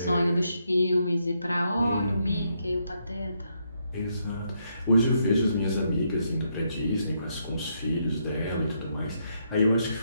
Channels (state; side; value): inverted; both; correlation -0.77